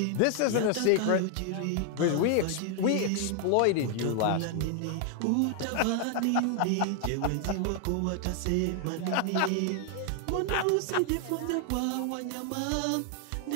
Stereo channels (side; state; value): both; different; correlation 0.00